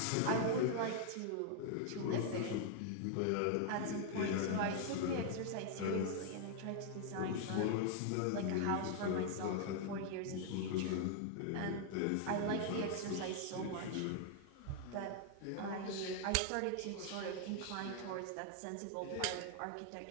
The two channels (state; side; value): different; both; correlation 0.00